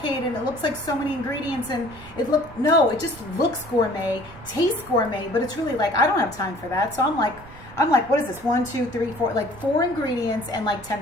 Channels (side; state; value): right; noise; rumble, 19 dB below the sound